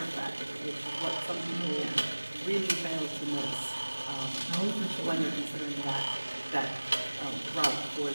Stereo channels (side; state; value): both; inverted; correlation -1.00